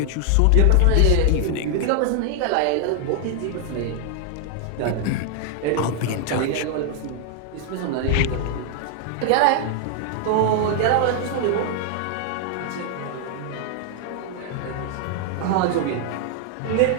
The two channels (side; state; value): both; different; correlation 0.00